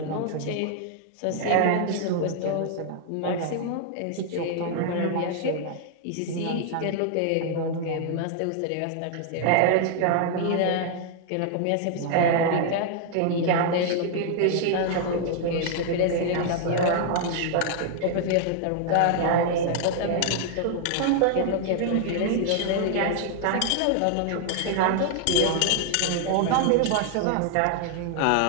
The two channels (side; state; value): both; different; correlation 0.00